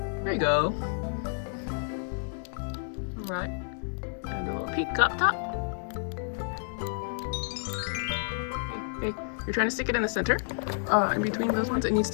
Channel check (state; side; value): silent; right; digital silence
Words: There you go. Alright. And a little pink up top. Okay, you're trying to stick it in the center. In between those ones, it needs